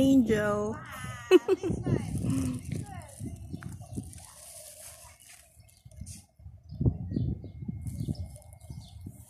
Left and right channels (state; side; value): identical; both; correlation 1.00